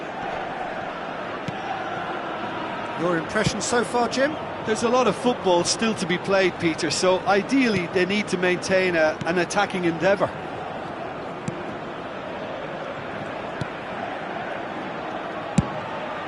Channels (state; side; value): identical; both; correlation 1.00